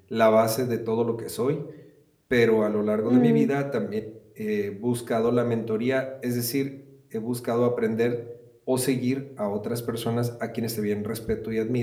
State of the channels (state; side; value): identical; both; correlation 1.00